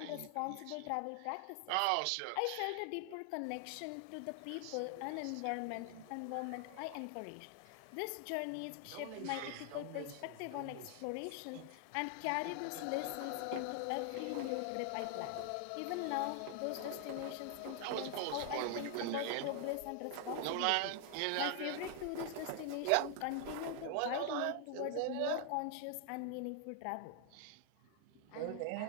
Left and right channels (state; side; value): different; both; correlation 0.00